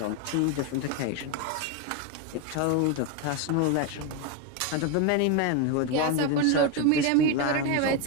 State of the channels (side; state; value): both; different; correlation 0.02